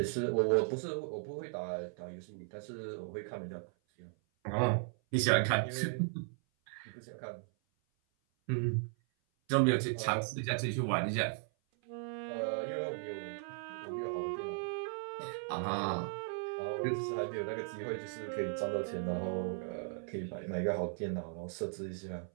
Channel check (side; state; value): left; silent; 53 dB below the other